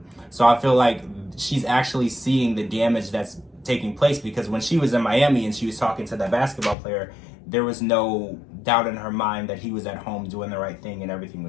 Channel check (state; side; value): drops out; right; at 6.8 s